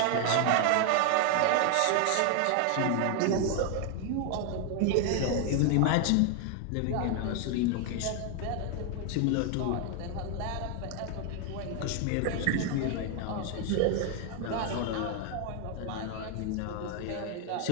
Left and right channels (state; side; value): different; both; correlation 0.00